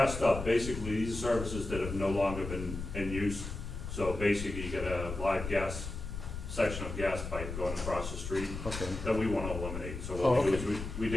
stub, basically, these are services that have no longer been in use. So basically, you get a live gas section of gas pipe going across the street Okay, that we wanna eliminate. So Oh, what we do okay. is we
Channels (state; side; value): noise; left; rumble, 7 dB below the sound